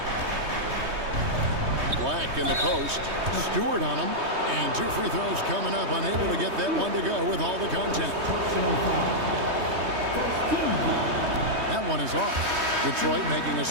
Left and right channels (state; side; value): late; left; 3.2 ms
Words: Black in the post. Stewart on him. And 2 free throws coming up. Unable to get that one to go with all the contact. That one is off. Detroit making a